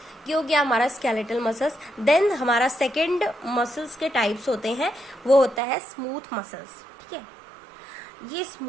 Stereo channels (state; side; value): drops out; left; at 5.6 s